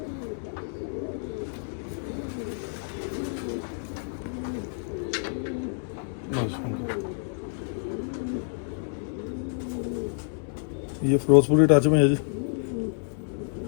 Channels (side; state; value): right; silent; 59 dB below the other